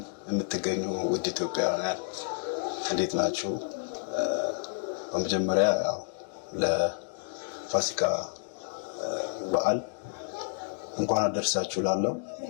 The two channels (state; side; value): silent; right; digital silence